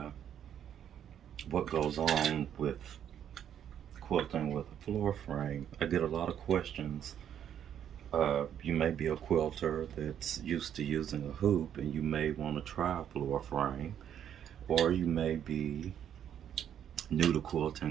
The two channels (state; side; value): quieter; left; 9.6 dB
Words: what goes on with quilting with a floor frame. I get a lot of questions. You may be a quilter that's used to using a hoop and you may want to try a floor frame, or you may be new to